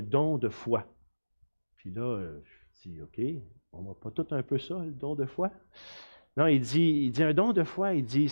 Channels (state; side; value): inverted; both; correlation -1.00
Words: don de foi. Puis là, je dis, OK, on va pas tout un peu ça, le don de foi? Non, il dit un don de foi, il dit,